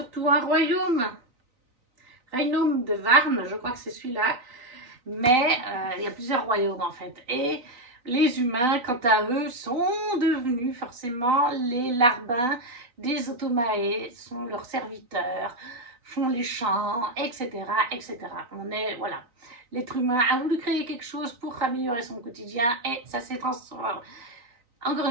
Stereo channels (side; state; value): left; late; 3.9 ms